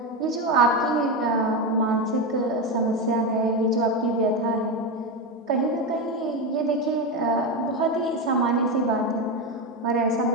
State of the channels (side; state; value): both; normal; correlation 0.13